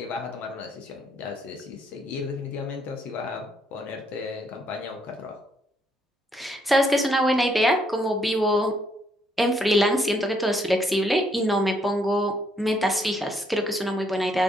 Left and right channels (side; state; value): both; normal; correlation 0.71